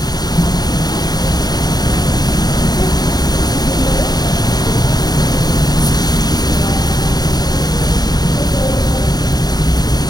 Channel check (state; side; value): late; right; 0.19 ms